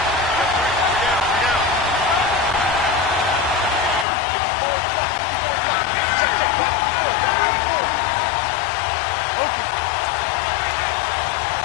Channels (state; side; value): drops out; right; at 4.0 s